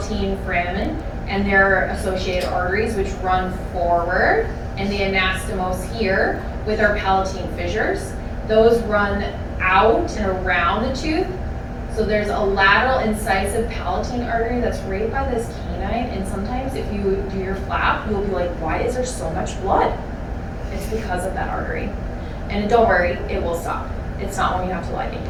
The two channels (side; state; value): both; identical; correlation 1.00